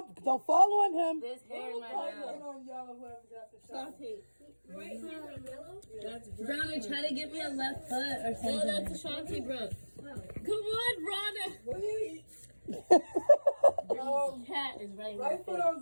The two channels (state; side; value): inverted; both; correlation -1.00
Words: Don't fall on him. This hair in my Right mouth. foot on yellow, whoever got the shot. Brownie, try to give me a left foot or something. No, that's Ashanti, bro. Come on, Rhonda. Wait. Cat is right. Right foot on